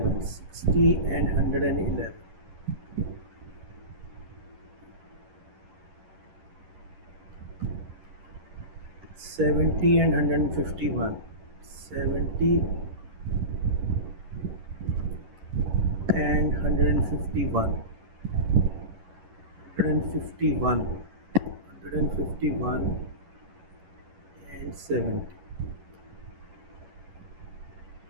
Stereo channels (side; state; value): left; late; 11 ms